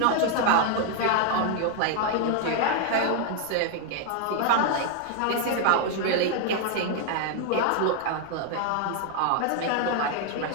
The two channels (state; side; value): different; both; correlation 0.00